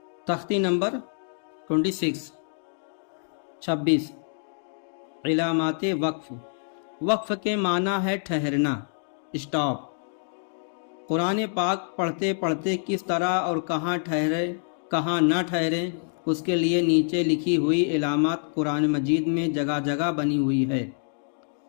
تختی نمبر 26 علامات وقف۔ وقف کے معنی ہے ٹھہرنا، اسٹاپ۔ قرآن پاک پڑھتے پڑھتے کس طرح اور کہاں ٹھہرے کہاں نہ ٹھہرے، اس کے لیے نیچے لکھی ہوئی علامات قرآن مجید میں جگہ جگہ بنی ہوئی ہے۔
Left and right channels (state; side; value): silent; right; digital silence